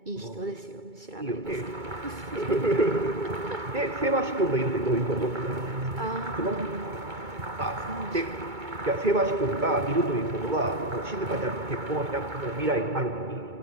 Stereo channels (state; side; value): late; left; 2.2 ms